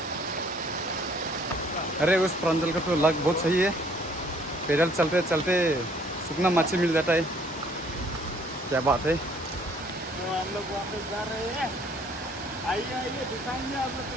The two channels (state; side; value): normal; both; correlation 0.60